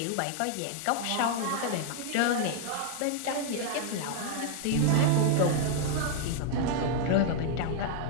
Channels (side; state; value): both; different; correlation 0.00